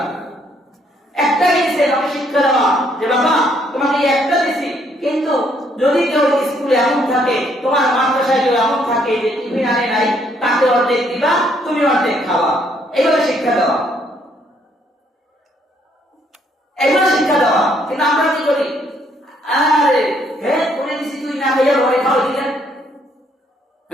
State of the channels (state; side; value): normal; both; correlation 0.69